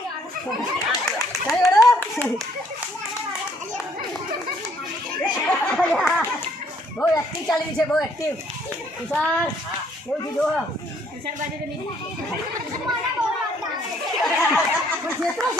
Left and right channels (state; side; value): normal; both; correlation 0.65